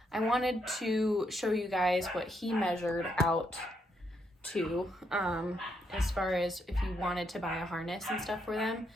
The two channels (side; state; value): both; normal; correlation 0.77